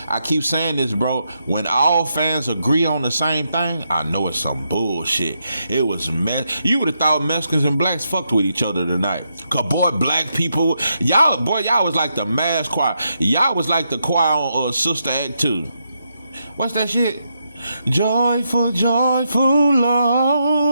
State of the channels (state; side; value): inverted; both; correlation -0.81